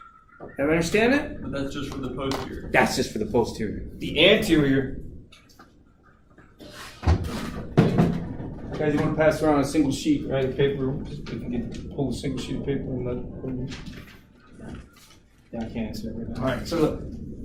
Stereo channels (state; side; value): identical; both; correlation 1.00